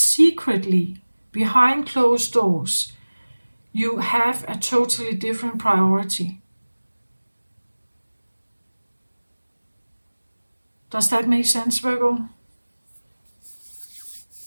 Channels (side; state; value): both; inverted; correlation -1.00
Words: behind closed doors, you have a totally different priority. Does that make sense, Virgo?